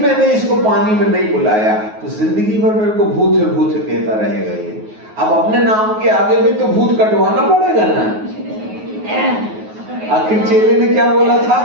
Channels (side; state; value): left; late; 9.4 ms